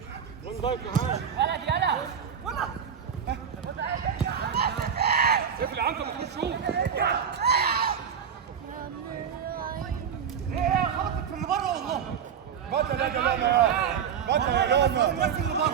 وين ضايق معاه يلا اقفل يا عنتر ما تخش شوف خبطت في اللي بره والله بطل يا جماعه بطل يا جماعه الناس اللي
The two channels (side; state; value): left; quieter; 7.7 dB